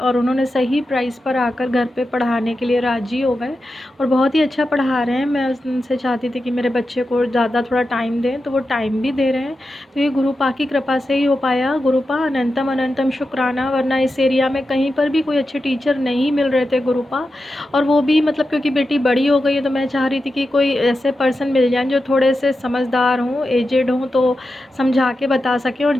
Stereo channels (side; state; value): both; normal; correlation 0.90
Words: उन्होंने सही प्राइस पर आकर घर पे पढ़ाने के लिए राज़ी हो गए और बहुत ही अच्छा पढ़ा रहे हैं। मैं उनसे चाहती थी कि मेरे बच्चे को ज़्यादा थोड़ा टाइम दें, तो वो टाइम भी दे रहे हैं। तो ये गुरुपा की कृपा से ही हो पाया। गुरुपा अनंतम अनंतम शुक्राना, वरना इस एरिया में कहीं पर भी कोई अच्छे टीचर नहीं मिल रहे थे गुरुपा। और वो भी मतलब क्योंकि बेटी बड़ी हो गई है तो मैं चाह रही थी कि कोई ऐसे पर्सन मिल जाएँ जो थोड़े से समझदार हों, एजेड हों, तो समझा के बता सकें। और